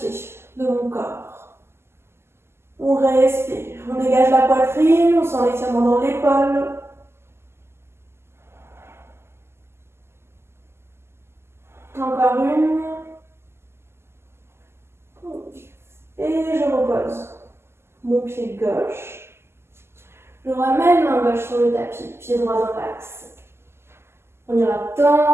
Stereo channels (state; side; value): late; left; 0.12 ms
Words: de mon corps. On respire. On dégage la poitrine, on sent l'étirement dans l'épaule. Encore une. Et je repose mon pied gauche. Je ramène main gauche sur le tapis, pied droit dans l'axe. On ira